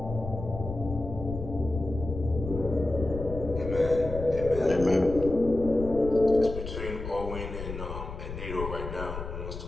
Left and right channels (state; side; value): noise; left; rumble, 8 dB below the sound